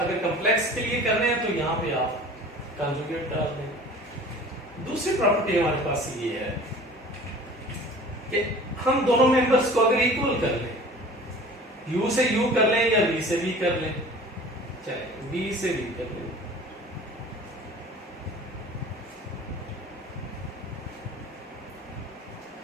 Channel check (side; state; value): both; normal; correlation 0.43